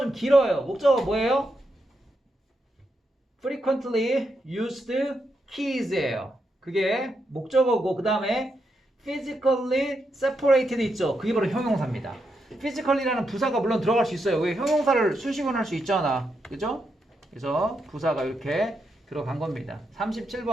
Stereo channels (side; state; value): both; normal; correlation 0.83